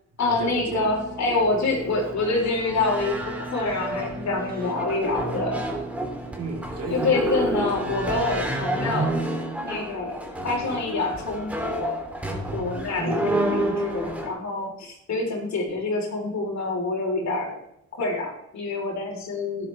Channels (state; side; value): normal; both; correlation 0.18